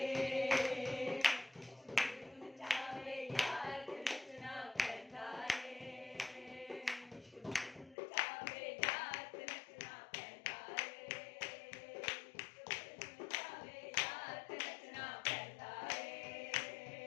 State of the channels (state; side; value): drops out; right; at 8.0 s